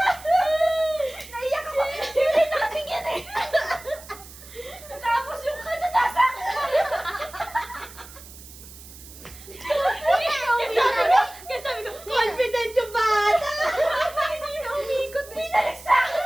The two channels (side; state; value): right; noise; hiss, 18 dB below the sound